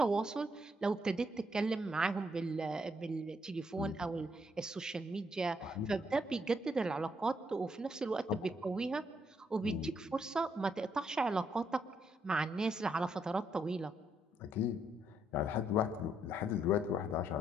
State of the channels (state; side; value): normal; both; correlation 0.74